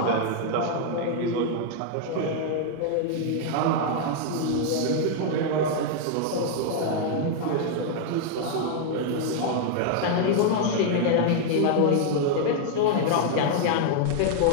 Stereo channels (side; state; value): both; different; correlation 0.00